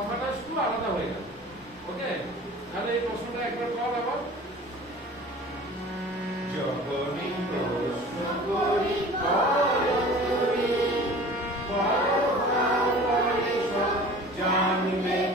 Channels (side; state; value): both; normal; correlation 0.42